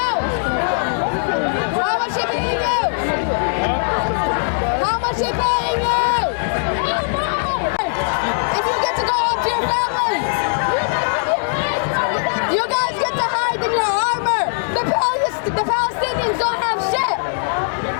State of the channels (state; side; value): silent; right; digital silence